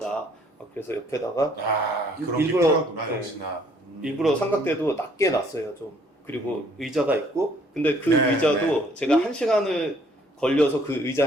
그래서 옆에다가 아 그런 게 일부러- 필요하구나 네. 역시나. 일부러 삼각대도 낮게 놨어요. 좀 그리고 의자가 있고 근데 그 네, 의자도 제가 1시간을 걸려서 그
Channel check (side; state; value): both; normal; correlation 0.62